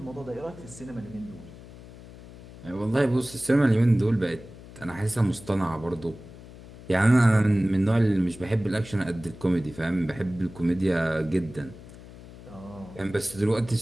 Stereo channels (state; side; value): noise; left; hum, 17 dB below the sound